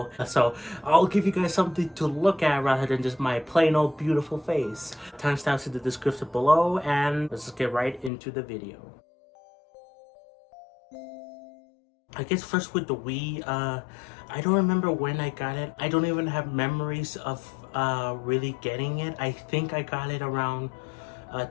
So I'll give you guys something to look at rather than just my plain old beautiful face. Timestamps in the description below, and let's just get right into the video. I guess first with the Wii, I don't remember when I got it. I don't even have memories of really getting it. I think I got it around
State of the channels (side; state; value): right; drops out; at 8.1 s